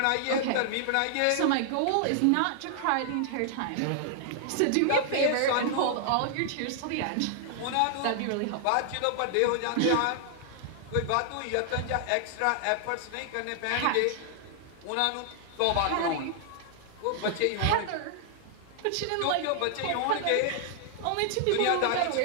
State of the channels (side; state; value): both; different; correlation 0.00